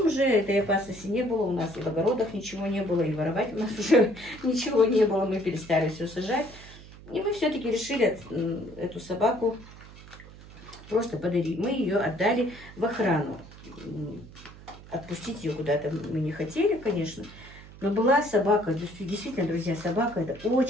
уже этой опасности не было, у нас и в огородах ничего не было, и воровать у нас уже ничего не было, мы перестали все сажать. И мы все-таки решили эту собаку просто подарить. Мы ее отдали в охрану. Отпустить ее куда-то мы не хотели, конечно. Но была собака, действительно, друзья, собака это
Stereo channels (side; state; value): right; noise; hum, 18 dB below the sound